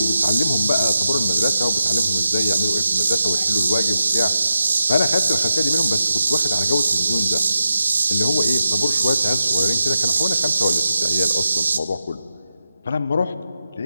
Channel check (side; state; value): both; inverted; correlation -0.89